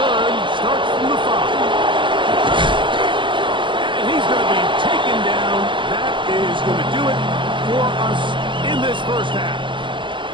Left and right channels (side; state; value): left; late; 0.23 ms